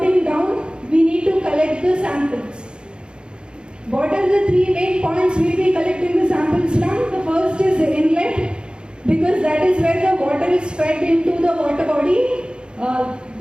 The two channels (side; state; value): left; late; 0.051 ms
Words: down, we need to collect the samples. What are the three main points we will be collecting the samples from? The first is the inlet, because that is where the water is fed into the water body.